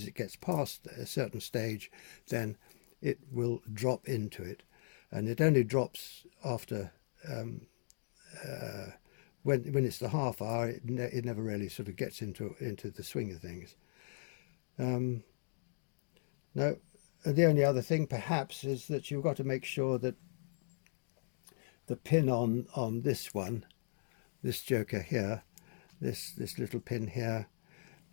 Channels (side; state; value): right; silent; digital silence